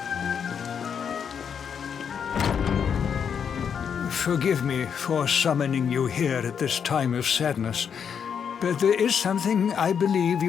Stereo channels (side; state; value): right; quieter; 7.3 dB